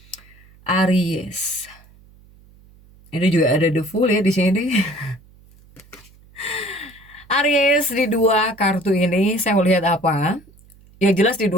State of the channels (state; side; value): noise; right; hum, 27 dB below the sound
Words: Aries. Ini juga ada The Fool ya di sini. Aries di 2 kartu ini saya melihat apa? Yang jelas di